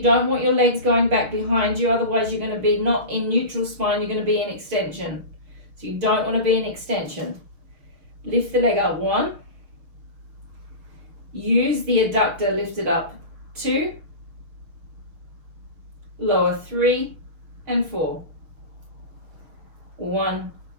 don't want your legs going back behind you, otherwise you're going to be not in neutral spine, you're going to be in extension. So you don't want to be in extension. Lift the leg up. 1. Use the adductor, lift it up. 2. Lower 3 and 4. 1,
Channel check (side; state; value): left; late; 6.5 ms